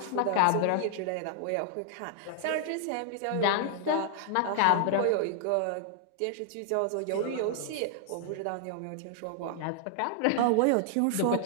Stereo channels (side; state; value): both; different; correlation -0.01